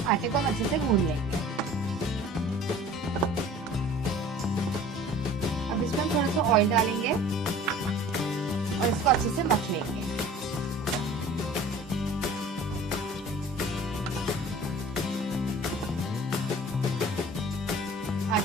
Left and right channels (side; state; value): both; normal; correlation 0.45